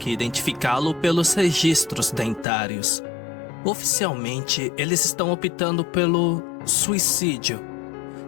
identificá-lo pelos registros dentários. Oficialmente, eles estão optando pelo suicídio.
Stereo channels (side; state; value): right; drops out; at 2.5 s